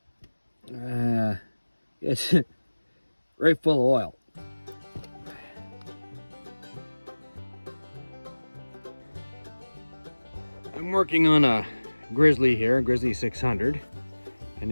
It's right full of oil. I'm working on a Grizzly here, a Grizzly 600, and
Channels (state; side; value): inverted; both; correlation -1.00